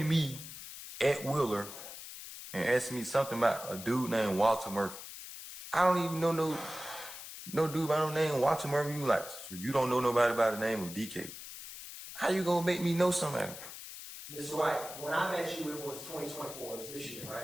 me at Wheeler and asked me something about a dude named Walter Murphy. I don't even know no dude by no name Walter Murphy. You like, so you don't know nobody by the name of DK. How you gonna make me know somebody? Mr. White, when I met you, it was 2024. It was this year,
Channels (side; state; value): left; noise; hiss, 12 dB below the sound